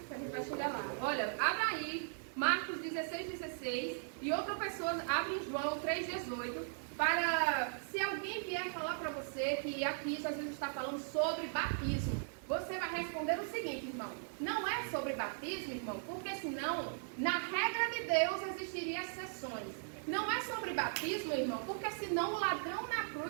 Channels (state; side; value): silent; left; 52 dB below the other